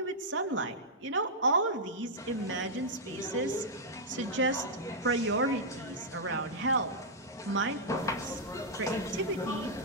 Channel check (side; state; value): both; normal; correlation -0.08